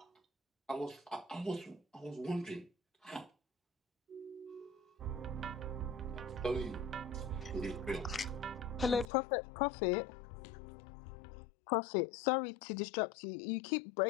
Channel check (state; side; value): drops out; right; at 9.1 s